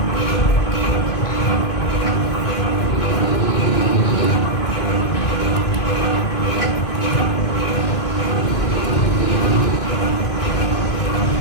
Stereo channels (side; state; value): right; late; 2.6 ms